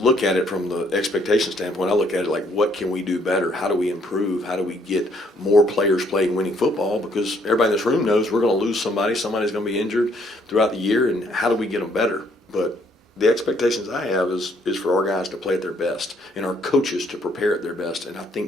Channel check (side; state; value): both; normal; correlation 0.67